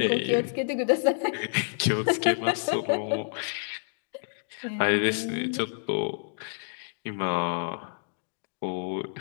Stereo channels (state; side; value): silent; right; digital silence